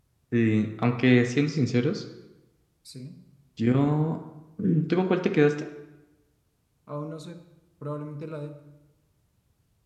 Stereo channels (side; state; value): both; identical; correlation 1.00